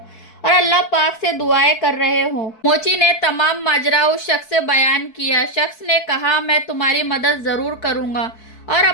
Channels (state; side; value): late; right; 4.6 ms